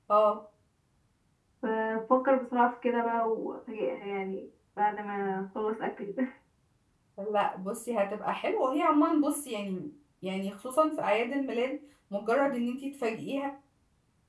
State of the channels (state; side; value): identical; both; correlation 1.00